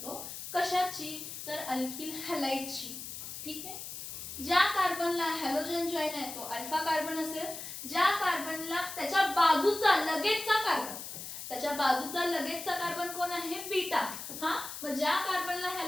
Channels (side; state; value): left; noise; hiss, 9 dB below the sound